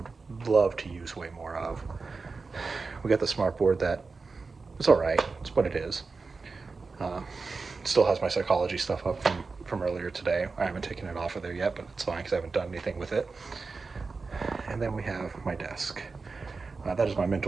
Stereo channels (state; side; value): quieter; left; 4.3 dB